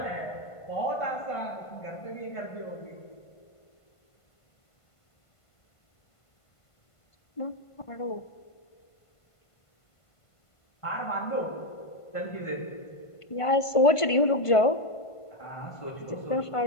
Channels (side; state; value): right; late; 1.5 ms